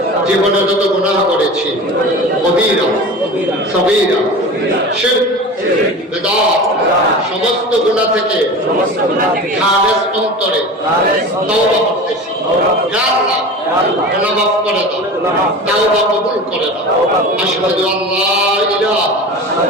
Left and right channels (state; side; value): normal; both; correlation 0.33